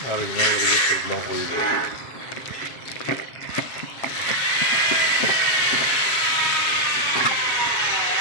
Original reduktor bilan qo'yib berildi.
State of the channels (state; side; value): late; right; 7.5 ms